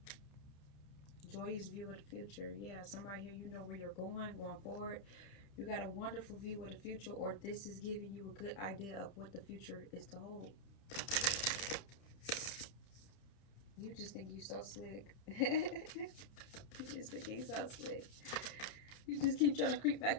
Joyous view of the future. Yeah, somebody here, you know where you're going forward. You got a wonderful view of the future, or this is giving you a good idea of what the future is to hold. You just think you're so slick. You just think you're so slick. You just keep trying to creep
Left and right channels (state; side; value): late; right; 30 ms